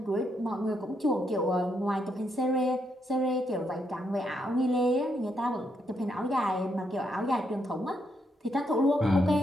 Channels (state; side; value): normal; both; correlation 0.78